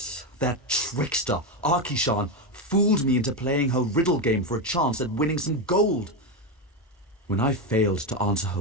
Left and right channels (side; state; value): both; normal; correlation 0.11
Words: that trickster, Arkishan, fooled me into playing her riddle game for a chance at winning some gold. When I failed to answer